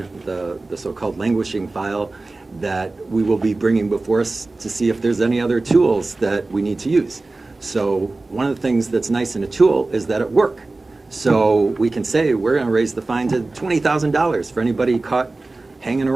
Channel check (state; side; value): quieter; left; 3.3 dB